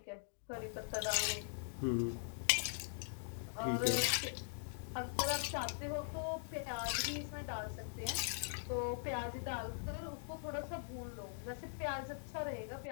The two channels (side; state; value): right; silent; digital silence